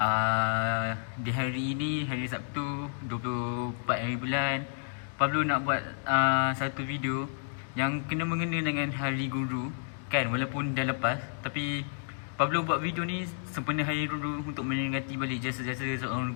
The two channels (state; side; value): silent; right; digital silence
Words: di hari ini, hari Sabtu 24 hari bulan, Pablo nak buat satu video yang kena mengena dengan Hari Guru. Kan, walaupun dah lepas, tapi Pablo buat video ni sempena Hari Guru untuk menyemangati balik jasa-jasa seorang